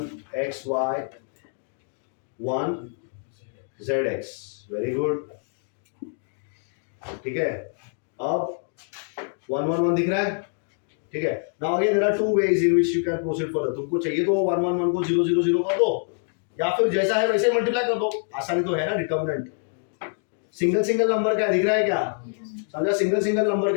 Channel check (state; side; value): silent; right; 59 dB below the other